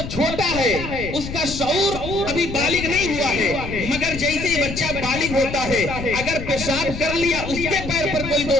چھوٹا ہے، اس کا شعور ابھی بالغ نہیں ہوا ہے، مگر جیسے ہی بچہ بالغ ہوتا ہے اگر پیشاب کر لیا اس کے پیر پر کوئی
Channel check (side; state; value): left; noise; rumble, 8 dB below the sound